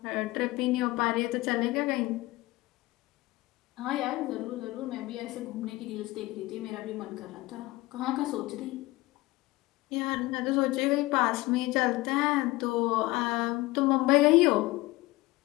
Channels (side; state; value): right; quieter; 19.8 dB